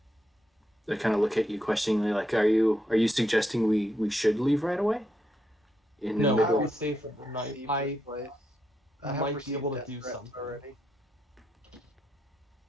they kind of look at you questioningly, like, are you suggesting we should leave right away? In the No, middle. we stay for the night. Received I this place. I have might be received able to death do threats something. already.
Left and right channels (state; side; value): normal; both; correlation 0.81